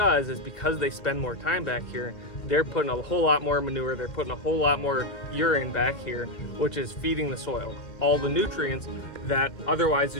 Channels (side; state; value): right; late; 2.4 ms